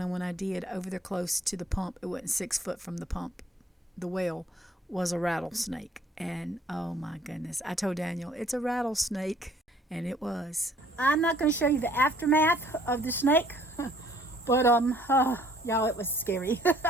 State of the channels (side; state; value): both; normal; correlation 0.59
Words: and when I did, over there close to the pump, it wasn't 6 foot from the pump, the well, was a rattlesnake. And oh my goodness, I told Daniel, it's a rattlesnake. And it was. I'm not going to show you the aftermath of the snake, but y'all, it was scary.